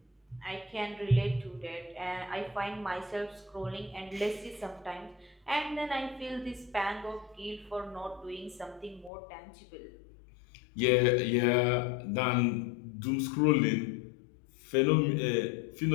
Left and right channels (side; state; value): right; drops out; at 9.1 s